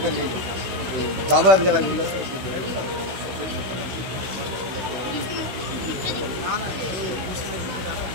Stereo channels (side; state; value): left; late; 16 ms